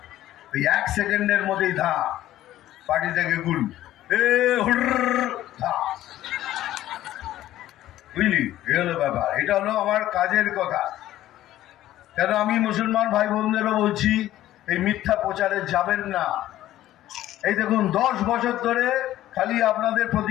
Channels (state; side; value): quieter; right; 13.9 dB